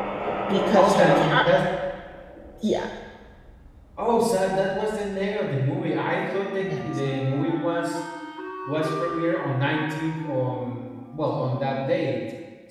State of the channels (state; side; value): identical; both; correlation 1.00